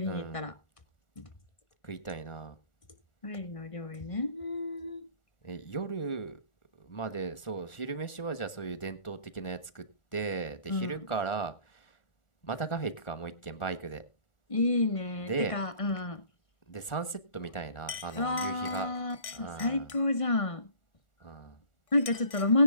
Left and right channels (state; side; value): late; right; 1.4 ms